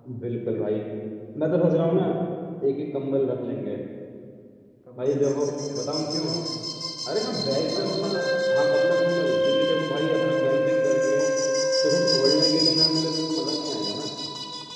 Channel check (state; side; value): identical; both; correlation 1.00